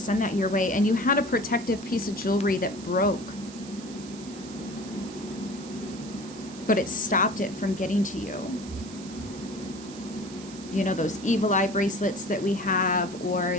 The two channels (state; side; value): noise; right; hiss, 17 dB below the sound